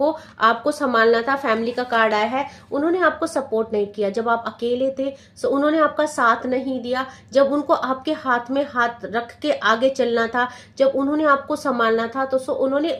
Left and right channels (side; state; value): both; identical; correlation 1.00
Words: आपको संभालना था, फैमिली का कार्ड आया है, उन्होंने आपको सपोर्ट नहीं किया। जब आप अकेले थे सो उन्होंने आपका साथ नहीं दिया। जब उनको आपके हाथ में हाथ रख के आगे चलना था, जब उन्होंने आपको संभालना था, तो सो उन्होंने